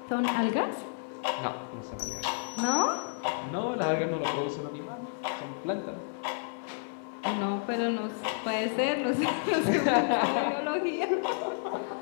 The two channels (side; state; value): right; silent; 57 dB below the other